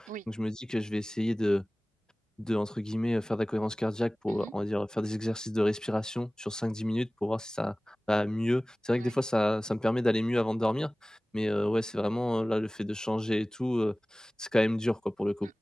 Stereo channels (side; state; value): both; normal; correlation 0.98